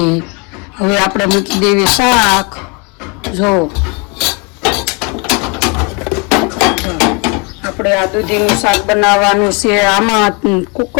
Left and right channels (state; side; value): quieter; right; 31.0 dB